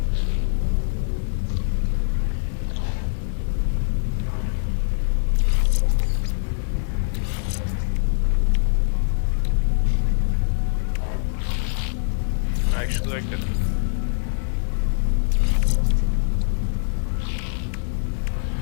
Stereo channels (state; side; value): silent; right; 63 dB below the other